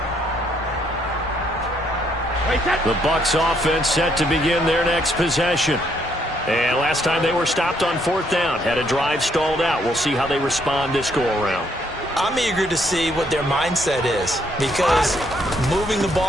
The Bucs offense set to begin their next possession. And last time they were stopped on 4th down. Had a drive stalled out. We'll see how they respond this go-around. I'm eager to see what their mindset is, because moving the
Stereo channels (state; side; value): normal; both; correlation 0.71